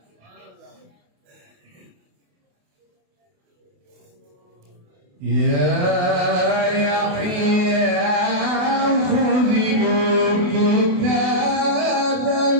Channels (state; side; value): late; left; 28 ms